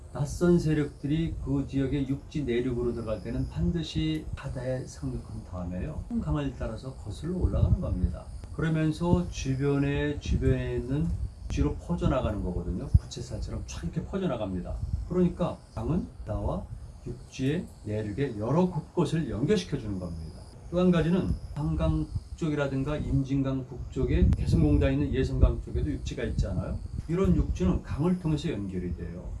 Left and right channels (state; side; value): identical; both; correlation 1.00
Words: 낯선 세력들이 그 지역의 육지 내륙으로 들어갈 때는 반드시 바다에 상륙한 다음에요. 강을 따라서 거슬러 올라가는 겁니다. 그러면서 주변에 있는 뒤로 퍼져나가는 거거든요. 부채살처럼 쫙 이렇게 퍼져나갑니다. 그러니까 강은 바다와 육지의 내륙의 여러 곳곳을 연결시켜 주는 겁니다. 또 한 가지는 한강 북쪽이라든가 임진강 북쪽에 개성공단에 있는 예성강 쪽에도 육지가 있잖아요. 이런 육지는 강을 통해서 연결이 돼요.